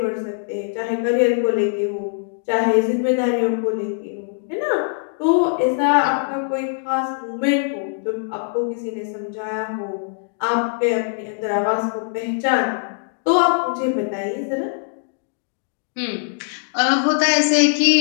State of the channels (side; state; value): right; silent; digital silence